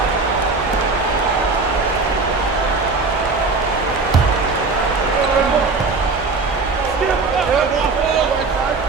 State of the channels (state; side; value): quieter; left; 4.0 dB